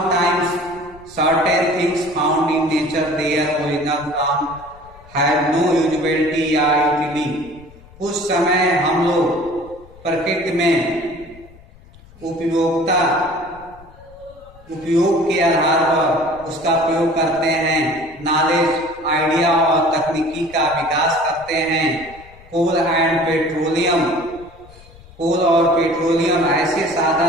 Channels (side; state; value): left; noise; rumble, 23 dB below the sound